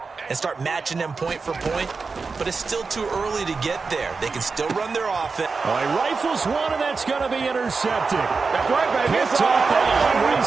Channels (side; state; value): left; quieter; 4.5 dB